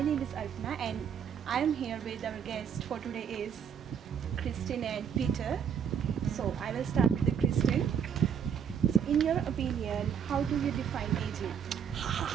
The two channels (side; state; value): left; quieter; 7.8 dB